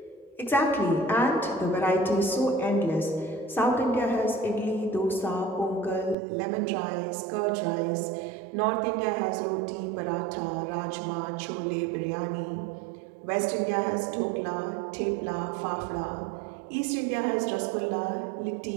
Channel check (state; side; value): drops out; left; at 6.2 s